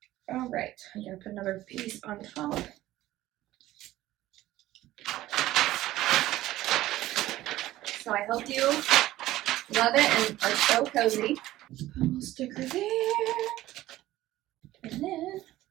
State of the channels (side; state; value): left; quieter; 15.6 dB